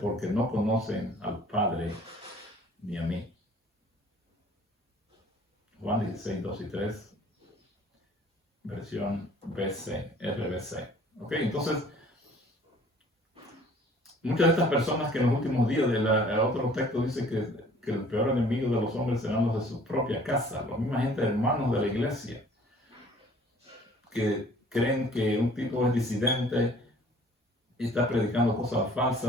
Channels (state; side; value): normal; both; correlation 0.53